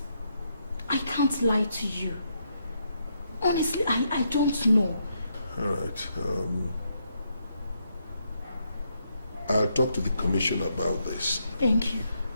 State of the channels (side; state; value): both; inverted; correlation -0.77